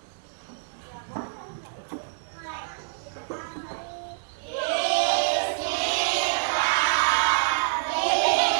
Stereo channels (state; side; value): silent; left; digital silence